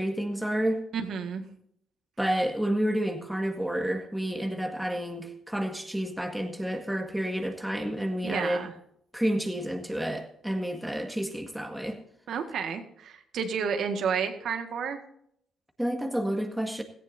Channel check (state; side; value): normal; both; correlation 0.90